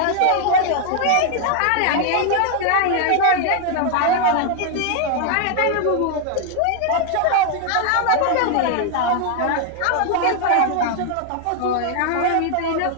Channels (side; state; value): both; different; correlation 0.00